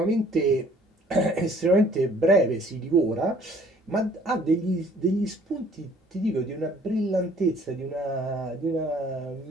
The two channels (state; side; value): normal; both; correlation 0.57